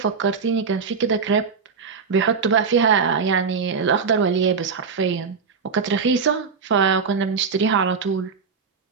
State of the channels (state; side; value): quieter; left; 5.5 dB